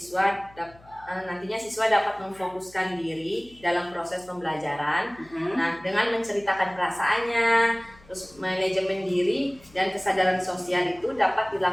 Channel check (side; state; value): left; noise; hum, 25 dB below the sound